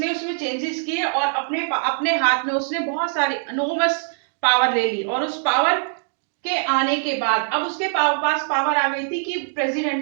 उसमें चेंजेस किए और अपने अपने हाथ में उसने बहुत सारी अनोमस पावर ले ली। और उस पावर के आने के बाद अब उसके पास पावर आ गई थी कि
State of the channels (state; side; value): silent; left; digital silence